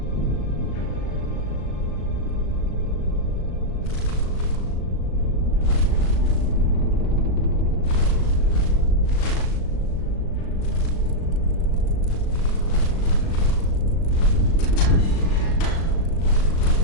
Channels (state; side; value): late; right; 37 ms